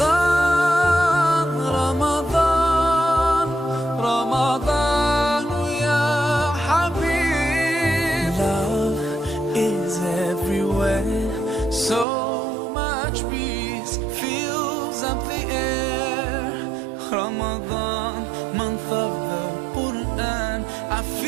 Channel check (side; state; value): left; drops out; at 12.1 s